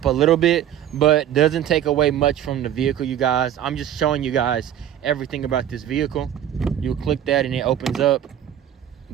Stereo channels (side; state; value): left; quieter; 10.7 dB